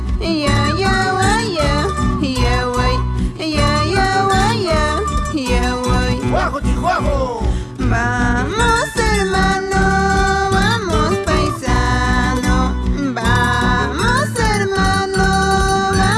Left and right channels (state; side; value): identical; both; correlation 1.00